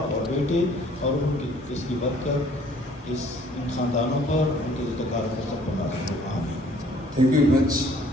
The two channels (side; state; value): both; normal; correlation 0.58